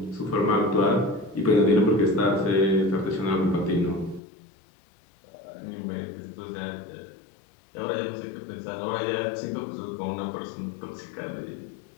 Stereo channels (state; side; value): drops out; right; at 4.2 s